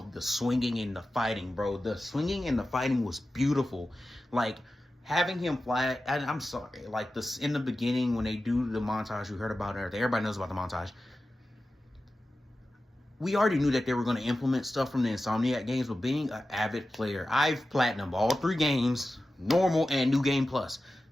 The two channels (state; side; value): normal; both; correlation 0.94